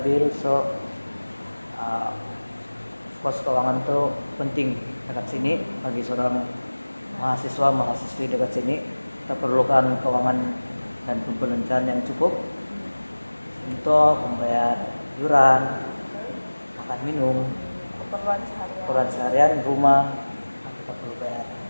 so kos keuangan tuh penting dekat sini bagi seorang mahasiswi dekat sini. Kita perlukan keuangan dan pembelanjaan yang cukup untuk membayar iuran, makan minum, keperluan seharian, rumah kita perlu bayar,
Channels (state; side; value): inverted; both; correlation -1.00